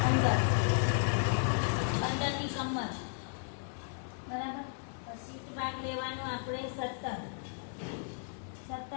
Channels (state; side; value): silent; right; digital silence